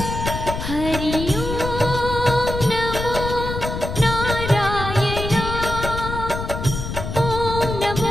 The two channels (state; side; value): noise; left; rumble, 5 dB below the sound